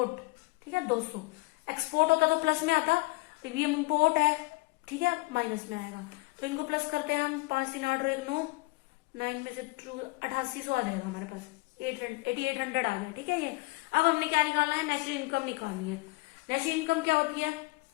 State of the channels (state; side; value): quieter; right; 25.0 dB